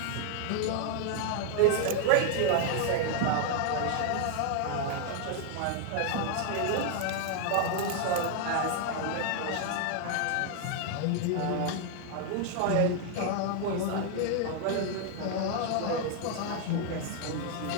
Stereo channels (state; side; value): different; both; correlation 0.00